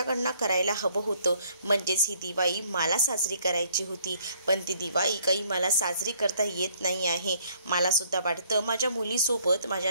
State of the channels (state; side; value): inverted; both; correlation -0.64